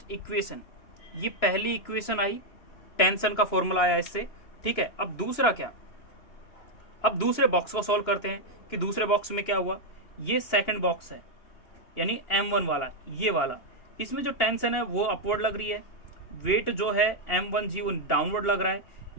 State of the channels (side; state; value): right; late; 2.9 ms